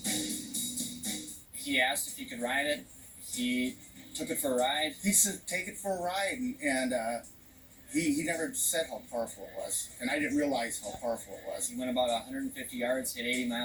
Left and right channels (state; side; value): identical; both; correlation 1.00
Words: He asked if he could ride it. He took it for a ride. He said, take it for a ride, and he never said how powerful it was, and I didn't realize how powerful it was. He went about 150 yards, hit 80